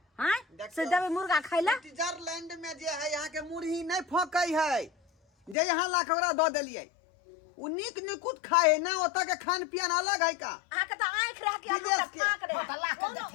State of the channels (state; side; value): drops out; right; at 5.6 s